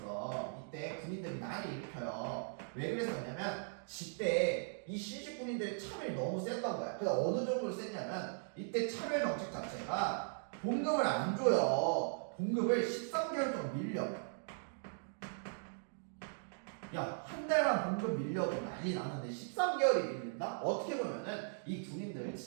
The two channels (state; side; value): silent; left; digital silence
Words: 이때 군인들이 난을 일으켜요. 왜 그랬었냐면 이때 이 신식 군인들의 차별이 너무 셌던 거야. 그래서 어느 정도로 셌냐면 이때 차별 정책 자체가 봉급을 안 줘요. 봉급을 13개월 동안 밀려. 야, 한 달만 봉급 밀려도 난리 나는데 13개월이 밀린다? 어떻게 보면은 이 군인들